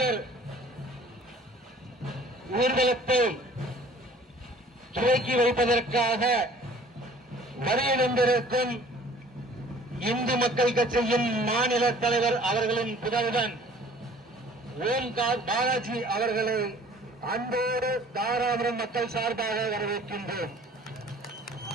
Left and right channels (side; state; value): both; normal; correlation 0.51